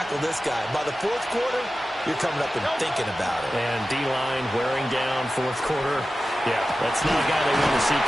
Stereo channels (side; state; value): both; normal; correlation 0.94